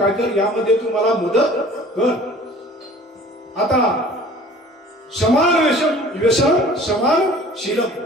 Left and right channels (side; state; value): both; normal; correlation 0.48